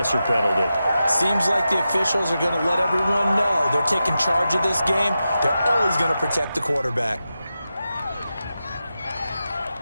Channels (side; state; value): both; inverted; correlation -0.91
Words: penalty. Seems like the officials are going to let everyone know they're taking charge of this game. They're always going to protect the quarterback.